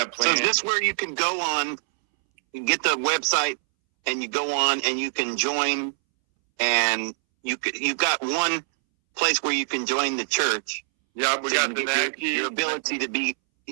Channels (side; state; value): left; silent; 62 dB below the other